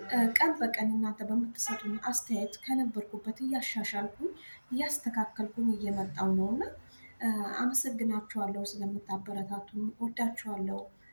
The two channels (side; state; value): both; inverted; correlation -1.00